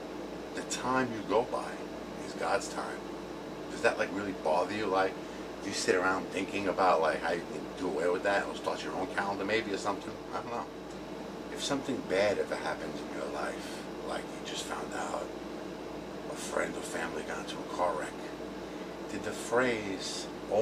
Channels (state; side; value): identical; both; correlation 1.00